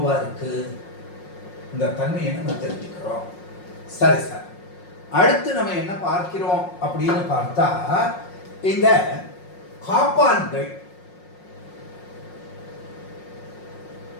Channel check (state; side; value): late; right; 5.5 ms